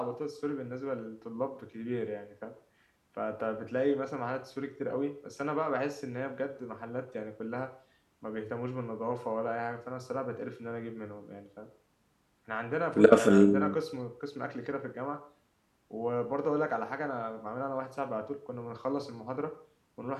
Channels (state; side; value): identical; both; correlation 1.00